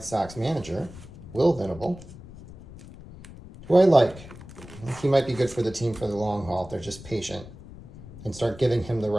Sox manager, Will Venable, who I like. I think he might be good for the team for the long haul if they're just patient and start giving him the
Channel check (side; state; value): left; noise; rumble, 16 dB below the sound